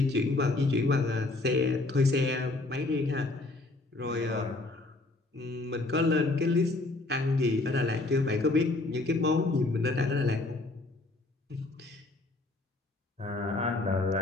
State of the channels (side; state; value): right; quieter; 3.1 dB